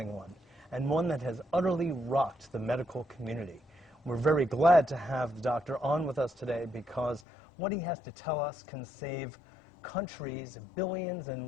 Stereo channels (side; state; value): right; drops out; at 7.2 s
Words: one, and one that has utterly rocked the medical community. We're very glad to have the doctor on with us today because what he has to tell us can save countries billions